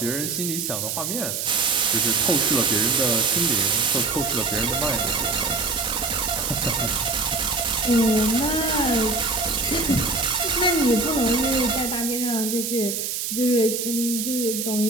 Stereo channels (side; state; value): right; noise; hiss, 3 dB below the sound